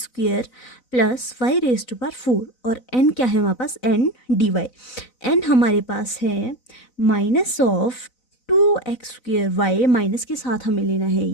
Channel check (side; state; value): right; late; 4.0 ms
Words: plus y raise to power 4, और n क्या है हमारे पास, n dy। n हमारे पास है माइनस ऑफ 2x²y, माइनस के साथ हमें लेना है